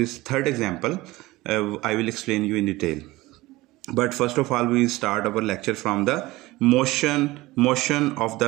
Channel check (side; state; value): left; quieter; 19.4 dB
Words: third example. I will explain you in detail. But first of all, we start our lecture from the motion of